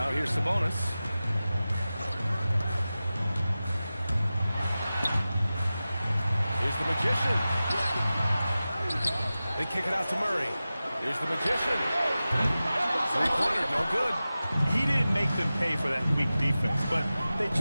here's Sabonis. Here's the Magician. They kick it out to Murray. Here's the Magician. Three-pointer, no good. He didn't make them pay for that weak defense, but they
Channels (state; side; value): inverted; both; correlation -0.95